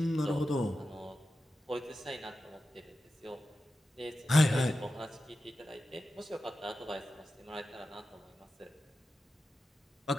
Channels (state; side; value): normal; both; correlation 0.92